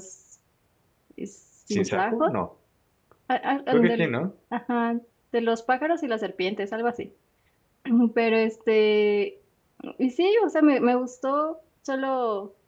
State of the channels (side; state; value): both; identical; correlation 1.00